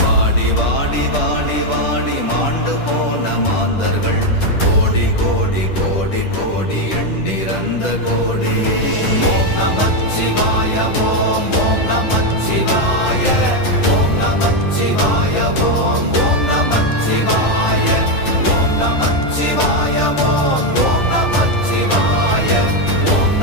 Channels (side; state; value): right; late; 10 ms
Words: வாடி வாடி வாடி வாடி மாண்டு போன மாந்தர்கள் கோடி கோடி கோடி கோடி எண்ணிறந்த கோடி. ஓம் நமச்சிவாய ஓம் ஓம் நமச்சிவாய ஓம் நமச்சிவாய ஓம் ஓம் நமச்சிவாய ஓம் நமச்சிவாய ஓம் ஓம் நமச்சிவாய ஓம்